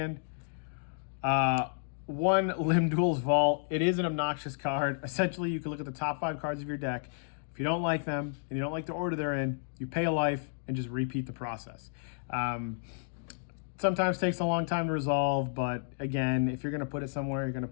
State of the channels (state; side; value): silent; right; digital silence